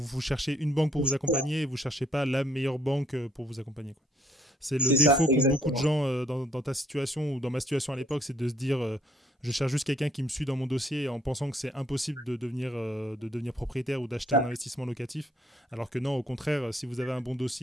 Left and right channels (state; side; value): normal; both; correlation 0.67